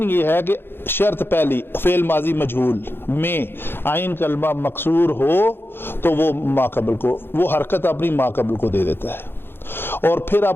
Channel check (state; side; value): late; right; 0.10 ms